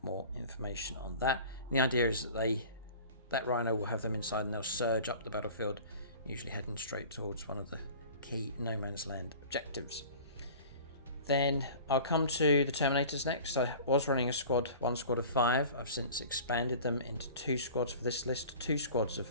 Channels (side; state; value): both; inverted; correlation -0.42